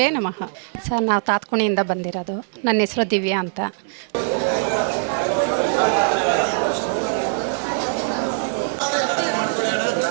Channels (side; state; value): left; silent; 64 dB below the other